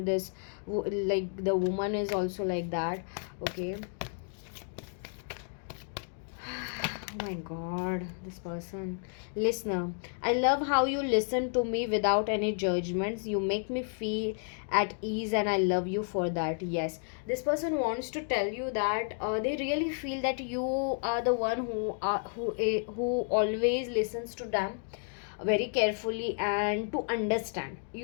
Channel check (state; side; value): silent; right; 57 dB below the other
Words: this like the woman is also like that, okay. Oh my god, this person. Listener, I love how you listen to me without any judgments. You make me feel at ease, and I love you for that. Yes, this person wants to tell you that they really feel that you are the one who always listens to them very carefully and to understand.